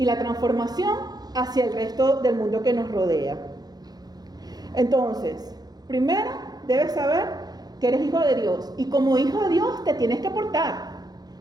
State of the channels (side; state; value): left; late; 0.19 ms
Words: la transformación hacia el resto del mundo que nos rodea. Entonces, primero debes saber que eres hijo de Dios y como hijo de Dios te tienes que portar.